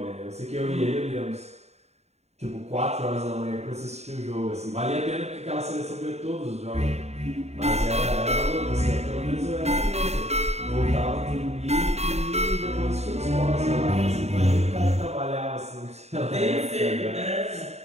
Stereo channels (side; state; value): left; late; 0.31 ms